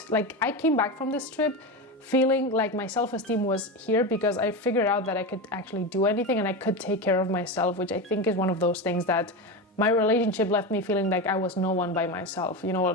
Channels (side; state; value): both; normal; correlation 0.19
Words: came back from this trip feeling like my self-esteem was here, because I figured out that I could actually do anything and I could take care of myself, which I think is one of those things that my relationship left me feeling like I was no one by myself, you